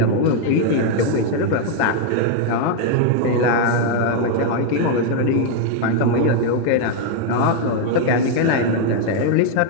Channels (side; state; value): both; different; correlation 0.00